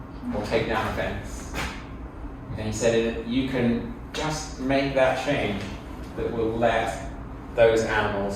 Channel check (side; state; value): both; identical; correlation 1.00